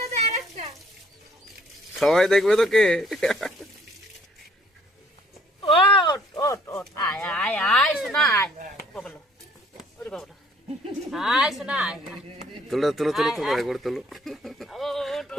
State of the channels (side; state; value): both; normal; correlation 0.61